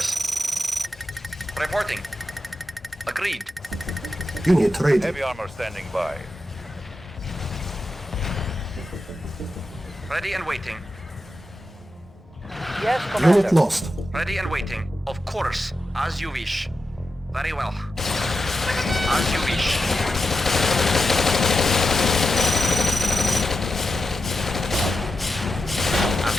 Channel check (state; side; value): normal; both; correlation 0.89